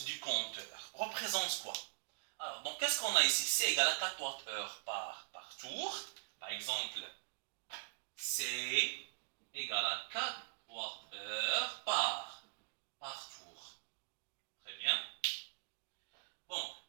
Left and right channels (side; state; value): left; silent; digital silence